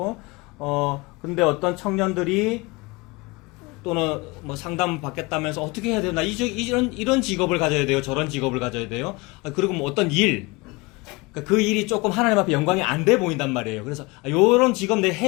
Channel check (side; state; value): right; quieter; 25.0 dB